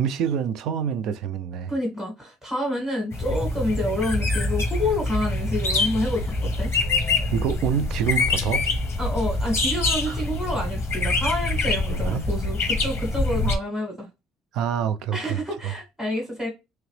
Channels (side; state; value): both; normal; correlation 0.53